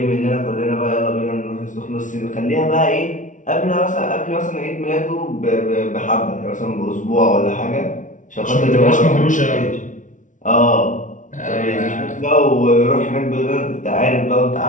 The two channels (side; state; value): right; late; 0.37 ms